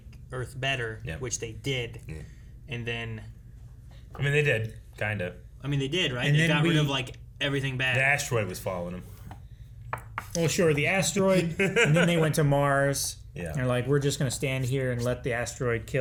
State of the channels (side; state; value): both; identical; correlation 1.00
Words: Earth better, which they did. Yeah. And then, I mean, they did, kind of. they did, right? And They then got rid we- of, like, everything bad. The asteroid was following them. Well, sure, the asteroid, and then they went to Mars. Yeah. They're like, we're just going to stand here and let the asteroid